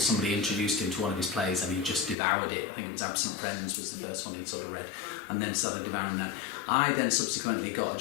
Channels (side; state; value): right; drops out; at 2.1 s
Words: introduced him to one of his plays and he just devoured it. I think it was Absent Friends was the first one he'd sort of read, and then started devouring that. I then subsequently got a